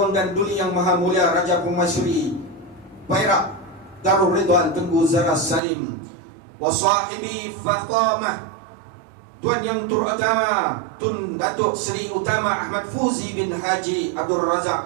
dan duli yang maha mulia Raja Permaisuri Perak Darul Ridwan Tengku Zara Salim. Wa sahibi Fatamah, tuan yang terutama Tun Datuk Seri Utama Ahmad Fuzi bin Haji Abdul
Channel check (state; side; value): drops out; left; at 5.6 s